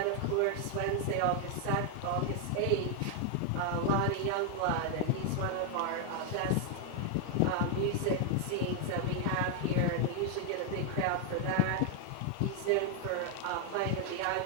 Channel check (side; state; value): both; different; correlation 0.00